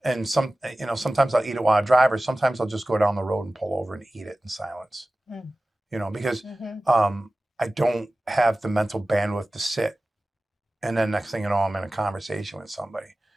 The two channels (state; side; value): normal; both; correlation 0.96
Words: And sometimes I'll eat it while I drive, or sometimes I'll just go down the road and pull over and eat it in silence. Because I don't have the mental bandwidth to sit. And then next thing you know, I'm in a conversation with somebody.